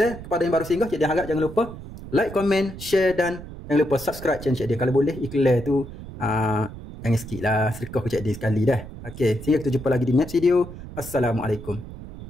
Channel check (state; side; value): noise; right; rumble, 13 dB below the sound